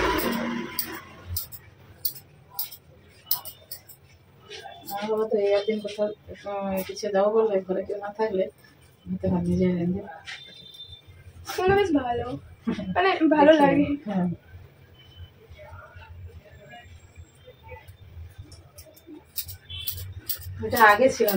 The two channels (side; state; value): both; identical; correlation 1.00